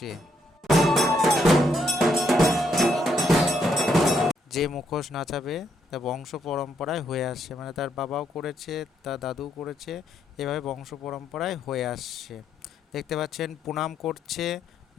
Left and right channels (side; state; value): both; normal; correlation 0.75